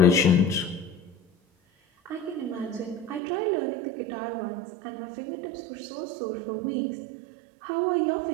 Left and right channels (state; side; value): drops out; left; at 3.2 s